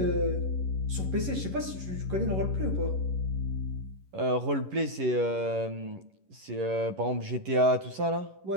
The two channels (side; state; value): left; late; 11 ms